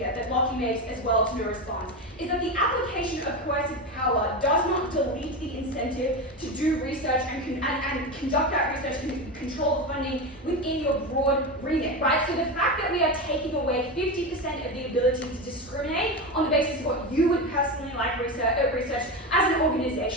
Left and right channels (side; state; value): both; normal; correlation 0.19